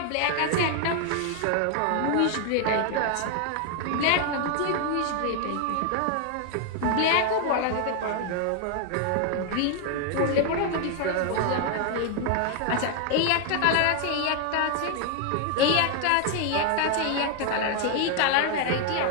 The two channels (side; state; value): both; different; correlation 0.00